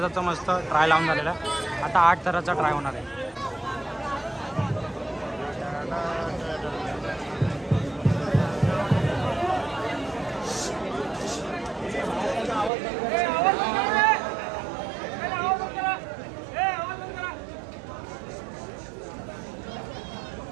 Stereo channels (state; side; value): drops out; left; at 12.7 s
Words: मस्त ट्राय लावून झालेला आहे. आता 8 थराचा ट्राय होणार आहे.